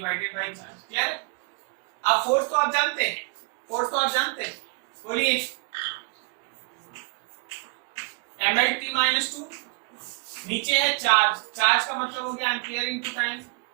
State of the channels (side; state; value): left; quieter; 34.8 dB